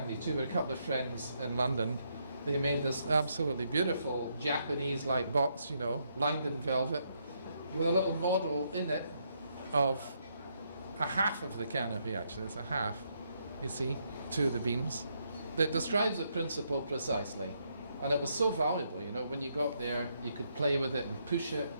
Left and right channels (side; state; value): both; inverted; correlation -0.76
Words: too. We had a couple of friends in London. They made this absolutely beautiful Japanese-like box, you know, lined in velvet, with a little model in it of a half of the canopy, actually. It's a half, you see, 2 of the beams. That describes the principle precisely. And it was so valuable, you know, when you got there, you could play with it and push it.